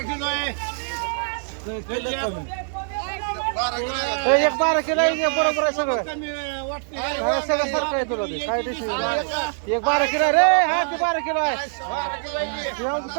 किलो आहे 12 किलो आहे बरोबर आहे सगळं सगळं सारखं आहे तुला ते काय डिश 12 किलो रे हा ते 12 किलो आहे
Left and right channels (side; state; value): left; silent; 61 dB below the other